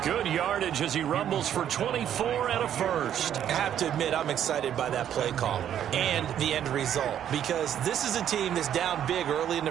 Good yardage as he rumbles for 24 and a first. I have to admit, I'm excited by that play call and the end result, because this is a team that's down big early in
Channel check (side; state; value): left; quieter; 10.1 dB